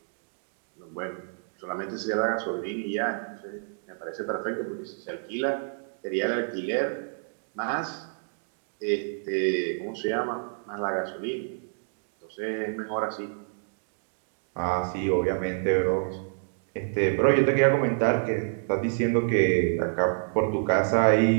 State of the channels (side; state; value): left; silent; digital silence